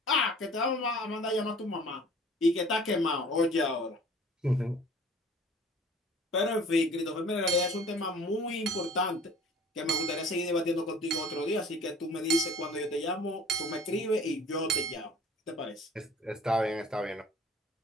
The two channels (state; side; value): normal; both; correlation 0.48